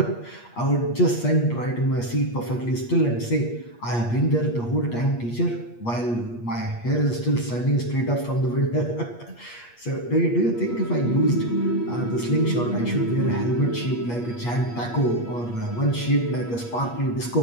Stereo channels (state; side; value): late; right; 8.4 ms